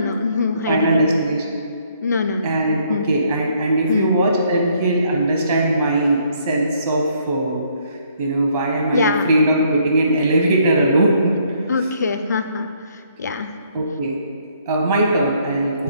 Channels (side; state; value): both; inverted; correlation -0.67